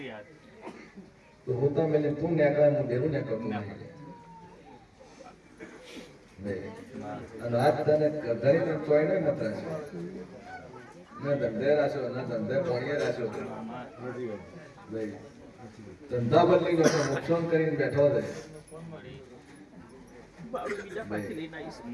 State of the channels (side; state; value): both; identical; correlation 1.00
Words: તો હું તો મેલે તું નેકળે હું ડેરું નેકળતું નહીં. અને આજ તને ગરધણીને ચોય નહીં મત રાખ્યો, ને ધંધે રાખ્યો, ને ધંધે પોણીએ રાખ્યો. ભાઈ ધંધા બદલી ગયો, નુકસાન કરીને બેઠો છે. બાળું બીજા પાછી લઈને આવીશ